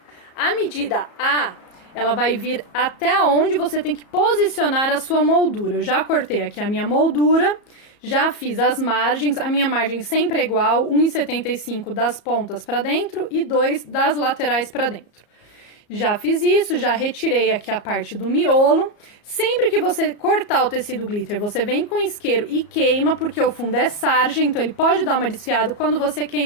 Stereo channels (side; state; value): right; late; 34 ms